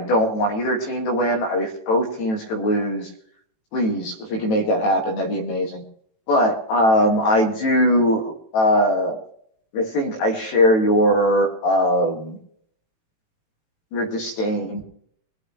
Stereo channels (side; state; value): right; late; 18 ms